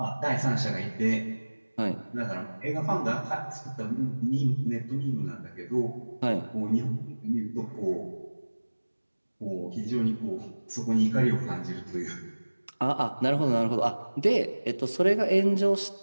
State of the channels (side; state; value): both; inverted; correlation -1.00